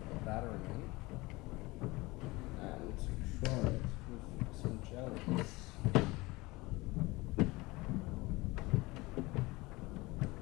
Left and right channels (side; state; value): right; quieter; 22.1 dB